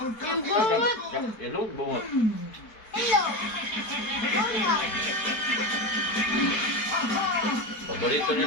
Yung bungot! Ilog, bungot. Hello! Bungot! Paborito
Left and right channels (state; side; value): late; right; 4.6 ms